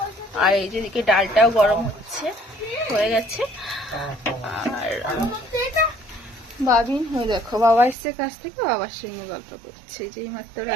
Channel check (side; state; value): left; drops out; at 8.0 s